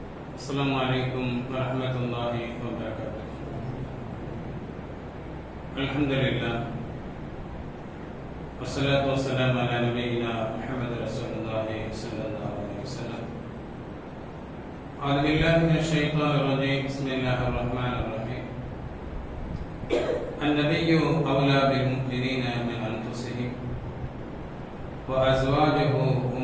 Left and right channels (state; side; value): identical; both; correlation 1.00